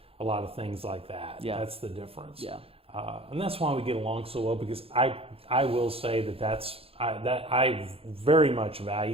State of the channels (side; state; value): left; late; 0.28 ms